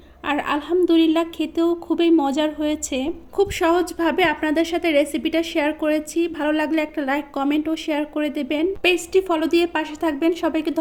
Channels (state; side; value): identical; both; correlation 1.00